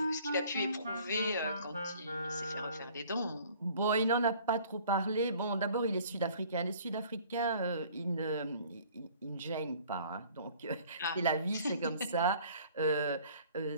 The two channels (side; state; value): both; inverted; correlation -0.53